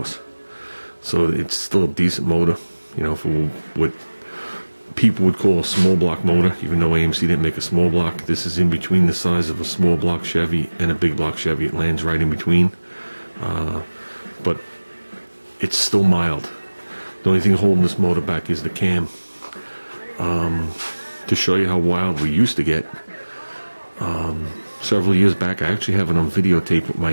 So it's still a decent motor, you know, for what people would call a small block motor, even though AMC didn't make a small block. This is in between the size of a small block Chevy and a big block Chevy. It lands right in between. But it's still mild. The only thing holding this motor back is the cam. To show you how wild we used to get, several years back, I actually have it on videotape with my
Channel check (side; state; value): both; inverted; correlation -1.00